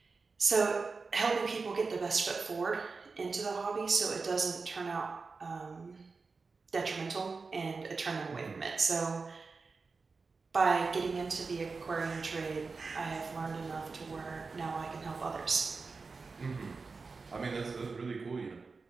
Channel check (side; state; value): left; quieter; 4.4 dB